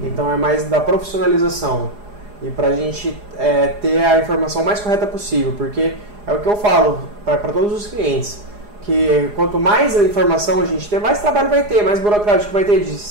então é mais da profissionalização e para a gente ter a informação mais correta possível, porque é o que eu falo para todos os clientes, que quanto mais informação a gente ter, mais trabalho vai ter, mais burocrático vai ter de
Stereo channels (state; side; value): late; left; 4.8 ms